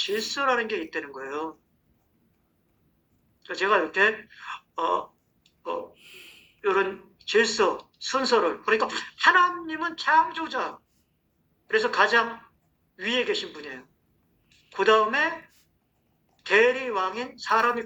게 있다는 거예요. 제가 이렇게 이런 질서, 순서를 그러니까 하나님은 창조자. 그래서 가장 위에 계신 분이에요. 그 다음에 대리왕인 사람이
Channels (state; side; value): identical; both; correlation 1.00